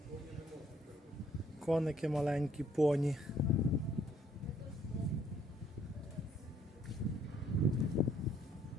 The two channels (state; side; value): normal; both; correlation 0.65